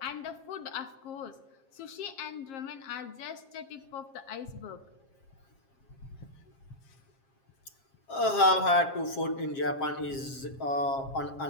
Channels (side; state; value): right; late; 7.5 ms